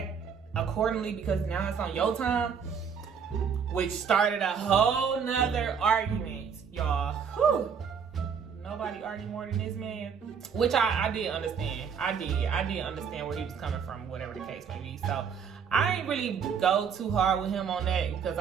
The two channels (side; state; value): left; quieter; 6.8 dB